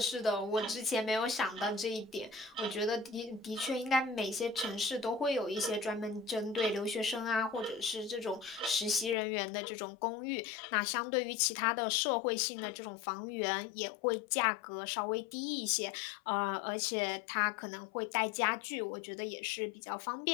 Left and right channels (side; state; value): right; drops out; at 9.2 s